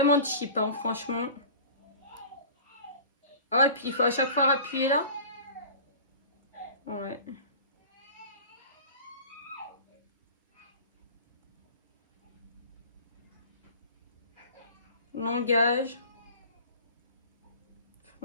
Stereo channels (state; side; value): inverted; both; correlation -0.41